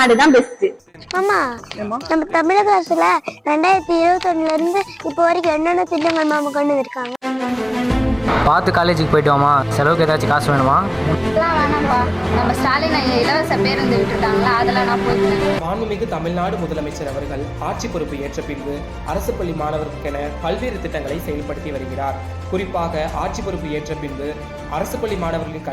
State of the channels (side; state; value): both; identical; correlation 1.00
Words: தான் பெஸ்ட். ஆமா, நம்ம தமிழக அரசுல 2021 இருந்து இப்போ வரைக்கும் என்னென்ன திட்டங்கள் மாமா கொண்டு வந்திருக்காங்க. பார்த்து காலேஜுக்கு போயிட்டு வாமா. செலவுக்கு ஏதாச்சும் காசு வேணுமா? வேணாம்பா, நம்ம ஸ்டாலின் இலவச பேருந்து விட்டுருக்காங்களா, அதில் நான் போயிட்டேன். மாண்புமிகு தமிழ்நாடு முதலமைச்சர் அவர்கள் ஆட்சி பொறுப்பு ஏற்ற பின்பு அரசு பள்ளி மாணவர்களுக்கென பல்வேறு திட்டங்களை செயல்படுத்தி வருகிறார். குறிப்பாக ஆட்சி பொறுப்பு ஏற்ற பின்பு அரசு பள்ளி மாணவர்களின்